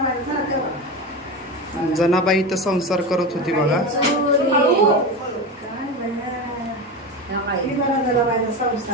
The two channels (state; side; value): normal; both; correlation 0.22